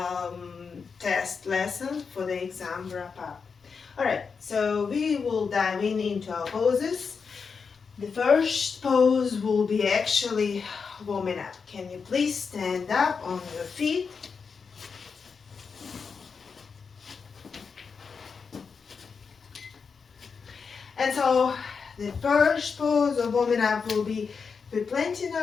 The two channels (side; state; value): right; quieter; 5.5 dB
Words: test lesson for the exam wrap up. Alright, so we will dive into our poses. The first pose will be actually warming up. Can you please stand up on your feet? And so the first pose of warming up will be planting